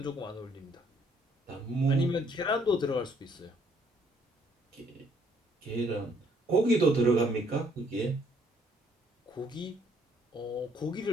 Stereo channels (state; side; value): normal; both; correlation 0.65